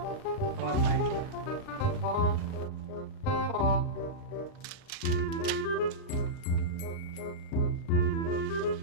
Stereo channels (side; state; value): right; late; 39 ms